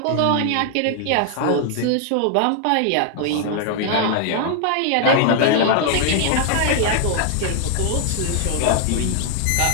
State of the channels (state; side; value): different; both; correlation 0.00